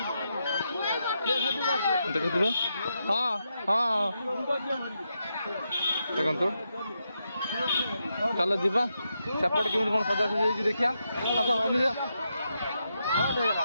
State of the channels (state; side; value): inverted; both; correlation -0.84